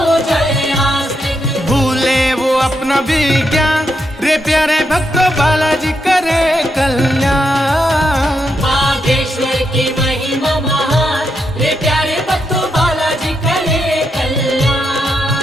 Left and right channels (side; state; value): both; normal; correlation 0.82